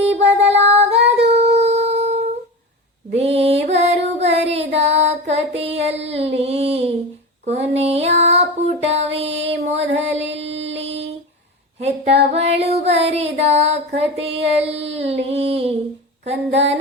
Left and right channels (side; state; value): both; normal; correlation 0.26